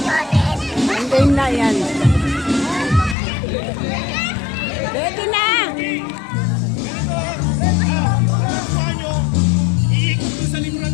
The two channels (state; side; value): drops out; right; at 3.2 s